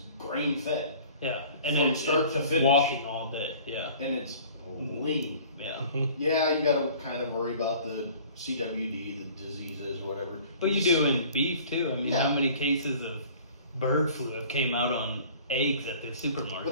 grain fed, Yeah, and From then start to finish. walking all day. Yeah, and it's lean. yeah. Yeah, you got to kind of worry about the CWD, the diseases, or whatever. But you do in beef too. I mean, Yeah. how many cases of bird flu have came out on eggs at the But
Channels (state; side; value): inverted; both; correlation -0.48